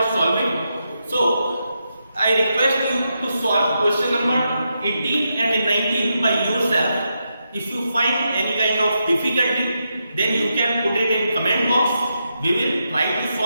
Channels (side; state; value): both; inverted; correlation -0.84